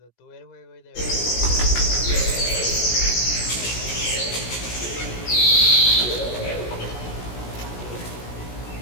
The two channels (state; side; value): late; right; 17 ms